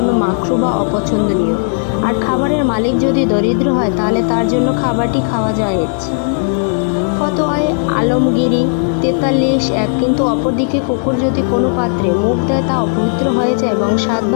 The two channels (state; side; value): silent; right; digital silence